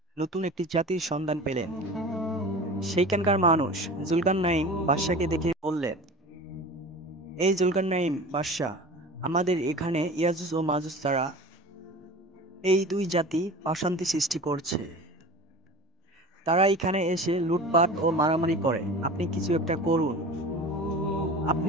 নতুন একটি জাতির সন্ধান পেলেন। সেইখানকার মানুষ জুলকারনাইন বাদশাকে দেখে বললেন, এই জুলকারনাইন বাদশাহ, আমাদের এখানে ইয়াজুজ ও মাজুজ তারা এই দুই জাতি অশান্তি সৃষ্টি করছে। তারা এখানে এসে লুটপাট ও মারামারি করে। আপনি কিছু একটা করুন।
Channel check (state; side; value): normal; both; correlation 0.36